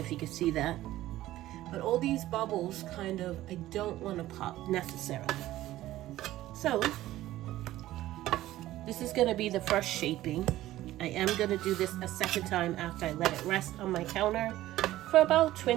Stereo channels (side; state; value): left; quieter; 15.1 dB